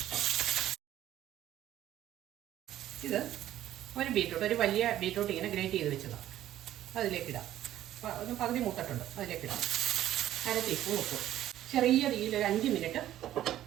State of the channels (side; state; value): left; quieter; 12.8 dB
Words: ഇത് ഒരു ബീറ്റ്റൂട്ട്, ഒരു വലിയ ബീറ്റ്റൂട്ട് ഇങ്ങനെ ഗ്രേറ്റ് ചെയ്ത് വെച്ചതാണ്. അതിലേക്കിടാം. ഒന്ന് പകുതി മൂത്തിട്ടുണ്ട്, അതിലേക്കിടാം. 1/2 ടീസ്പൂൺ ഉപ്പ്. ചെറിയ തീയിൽ ഒരു 5 മിനിറ്റ്